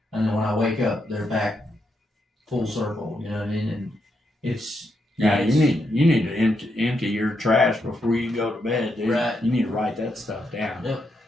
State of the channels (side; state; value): both; normal; correlation 0.81